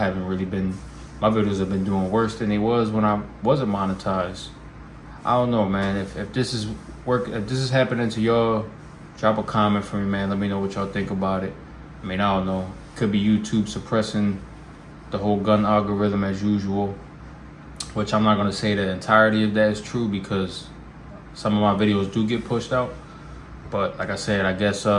really been, my videos have been doing worse than they was when I wasn't monetized. I don't know, man. If this is if this is happening to y'all, drop a comment for me, man. Let me know what y'all think about it. I mean, I don't know. Could be YouTube suppressing the whole gun algorithm as usual, which I'm not gonna say the entirety of that is true, because some of my videos do get pushed out. But like I said, I guess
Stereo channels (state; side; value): identical; both; correlation 1.00